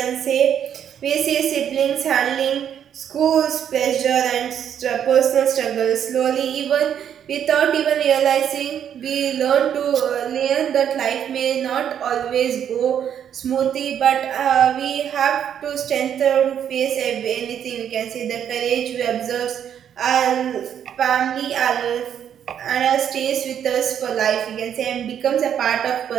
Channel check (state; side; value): quieter; left; 9.1 dB